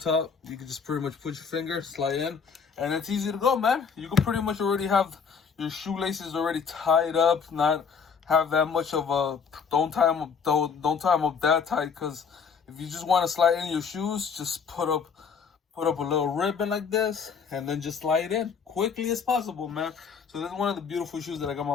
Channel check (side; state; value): right; quieter; 6.1 dB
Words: You can just pretty much put your finger, slide in, and it's easy to go, man. You can pretty much already have your shoelaces already tied up, not have that much of a, don't tie them up that tight, because if you just want to slide in your shoes, just put up a little ribbon like this, and then just slide in quickly as possible, man. So this is one of the beautiful shoes that I got my